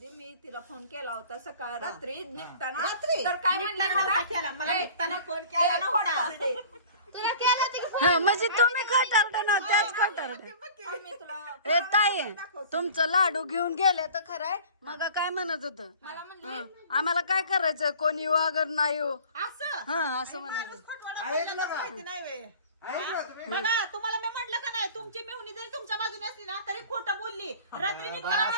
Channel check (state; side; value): inverted; both; correlation -0.44